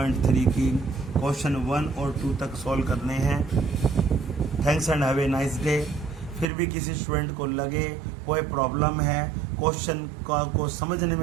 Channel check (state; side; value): drops out; left; at 6.5 s